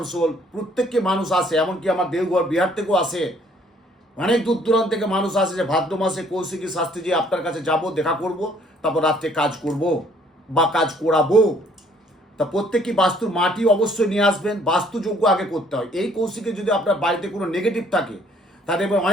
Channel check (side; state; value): both; normal; correlation 0.61